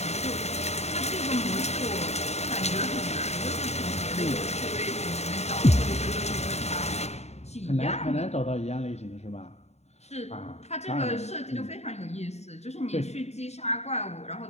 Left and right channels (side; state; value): right; late; 0.32 ms